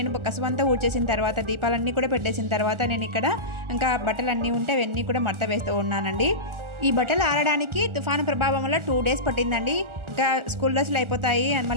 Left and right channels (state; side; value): late; left; 1.4 ms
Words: కసువంతా ఊడ్చేసిన తర్వాత దీపాలన్నీ కూడా పెట్టేసిన తర్వాత నేను ఇక్కడ ఇంకా బట్టలన్నీ ఉంటే అవన్నీ కూడా మడత వేస్తూ ఉన్నానండి. ఈ బట్టలు ఆరడానికి తుఫాను ప్రభావం వల్ల 2 days పట్టిందండి. ఇంకా స్కూల్ డ్రెస్సులు అయిపోతాయి అని